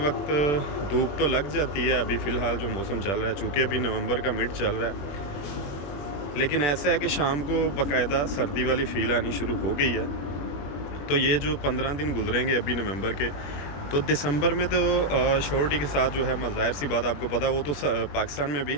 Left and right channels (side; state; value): right; late; 21 ms